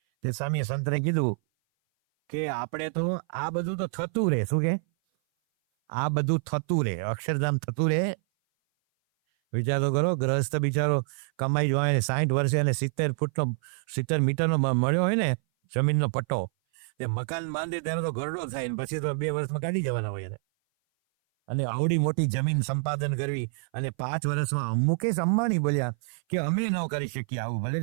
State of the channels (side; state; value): left; silent; 57 dB below the other